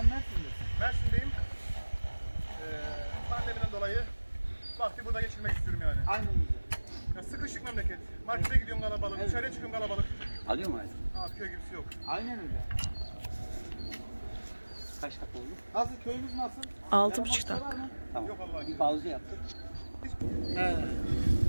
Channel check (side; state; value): both; inverted; correlation -1.00